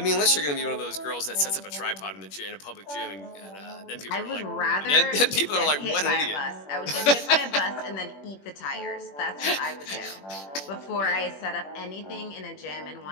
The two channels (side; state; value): right; late; 21 ms